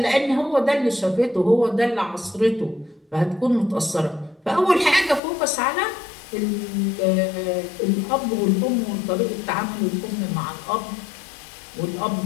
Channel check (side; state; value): right; drops out; at 5.2 s